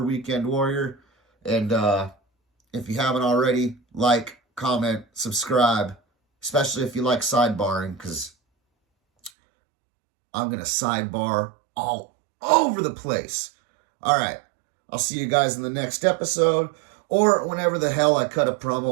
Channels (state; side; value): drops out; left; at 9.3 s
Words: Weekend Warrior. And if you haven't already, like, comment, subscribe, especially if you like sidebarring, because I'm going to sidebar all over the place. All right. I'll see you guys in the next episode or whenever the hell I cut a